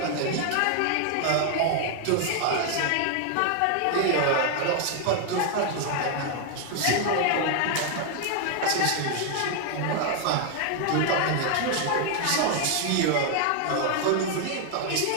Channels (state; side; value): different; both; correlation 0.00